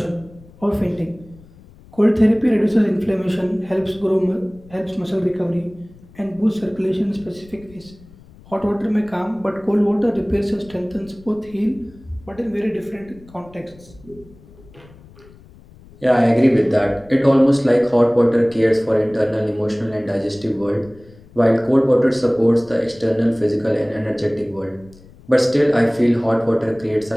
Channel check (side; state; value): left; noise; rumble, 24 dB below the sound